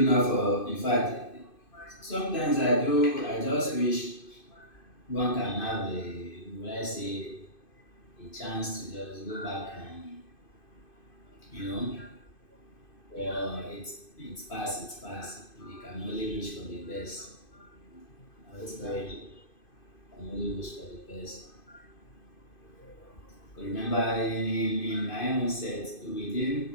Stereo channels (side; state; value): right; late; 2.5 ms